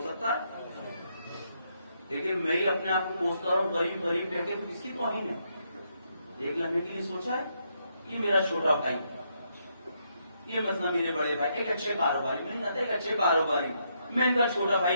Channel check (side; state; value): both; inverted; correlation -0.77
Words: سکتا ہے, لیکن میں ہی اپنے آپ کو کوستا ہوں غریب غریب کہہ کے, کس کی توہین ہے؟ ایک لمحے کے لیے سوچا ہے یہ میرا چھوٹا بھائی, یہ مسئلہ میرے بڑے بھائی ایک اچھے کاروباری میں نہیں جانتا، ایک اچھے کاروباری میں ان کا چھوٹا